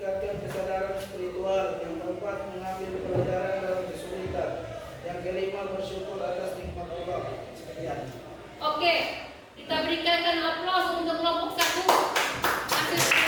kesadaran spiritual. Yang keempat mengambil pelajaran dalam kesulitan. Yang kelima bersyukur atas nikmat Allah. Sekian. Oke, kita berikan aplaus untuk kelompok 1.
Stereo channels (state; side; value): identical; both; correlation 1.00